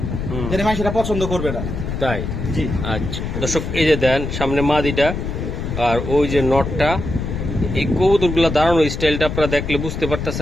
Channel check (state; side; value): noise; left; rumble, 4 dB below the sound